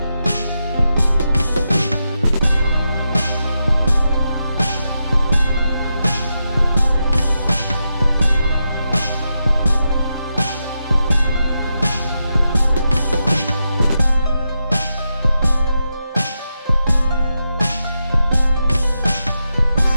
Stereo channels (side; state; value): both; inverted; correlation -0.87